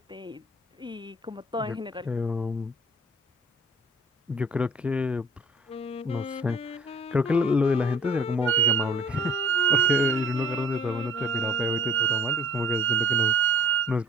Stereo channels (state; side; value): normal; both; correlation 0.50